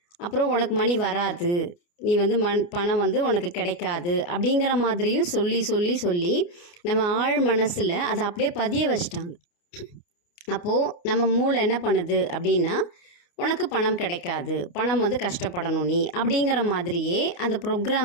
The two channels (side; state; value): right; late; 29 ms